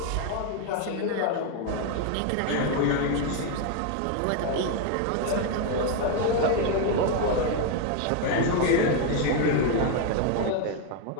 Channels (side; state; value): both; different; correlation 0.01